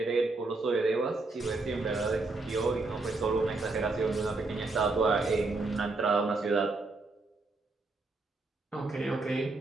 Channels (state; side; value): quieter; left; 3.4 dB